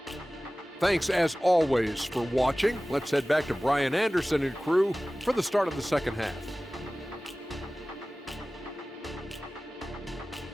Thanks as always for watching. Let's head back to Brian Anderson and crew for the start of the second half.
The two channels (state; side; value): normal; both; correlation 0.97